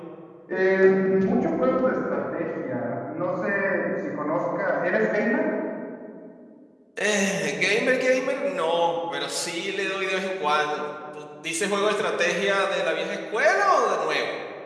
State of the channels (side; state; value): both; identical; correlation 1.00